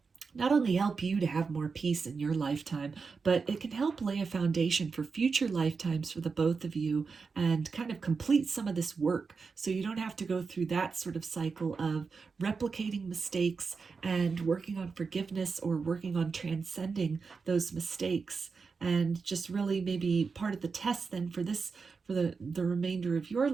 not only help you to have more peace in your lifetime, but it can help lay a foundation for future lifetimes for the both of you, and kind of complete some of this work so you don't have to go through that sort of cycle of replicating mistakes and working on forgiveness or working on transcending those mistakes. And just really maybe part of the test then for this, for the remainder of your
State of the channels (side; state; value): left; quieter; 4.9 dB